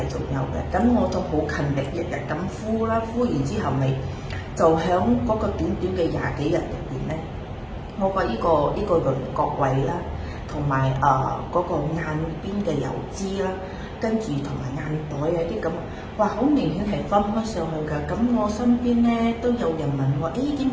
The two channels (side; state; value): both; identical; correlation 1.00